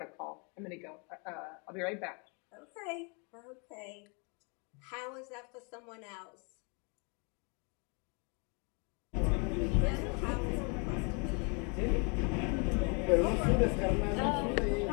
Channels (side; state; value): right; quieter; 34.4 dB